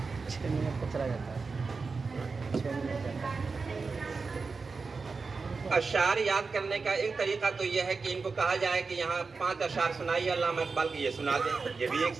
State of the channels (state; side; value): quieter; left; 4.5 dB